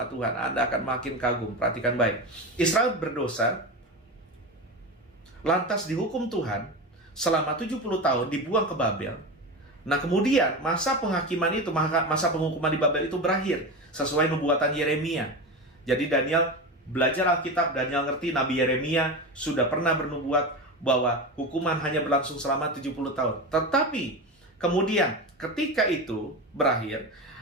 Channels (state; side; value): normal; both; correlation 0.23